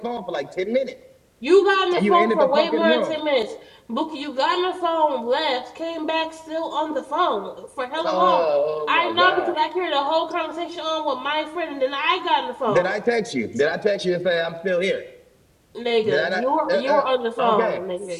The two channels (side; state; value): both; identical; correlation 1.00